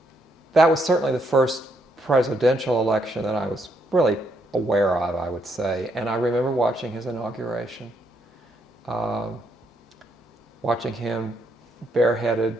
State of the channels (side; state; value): both; normal; correlation 0.75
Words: that was certainly the first presidential election that I was really aware of, I would say. And I remember watching his inauguration, watching him bareheaded